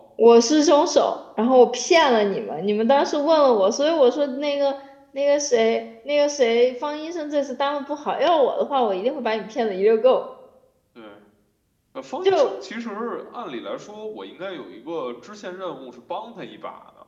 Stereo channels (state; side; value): identical; both; correlation 1.00